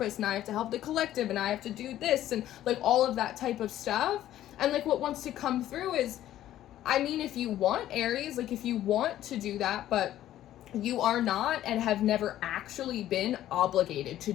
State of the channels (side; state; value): right; quieter; 12.9 dB